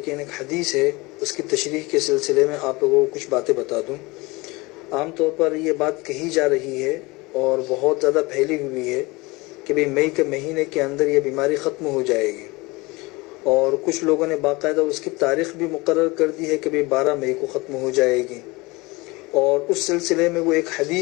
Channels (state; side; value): quieter; right; 23.6 dB